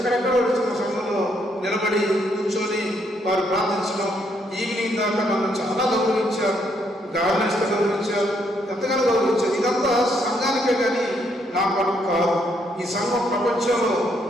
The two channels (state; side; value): normal; both; correlation 0.73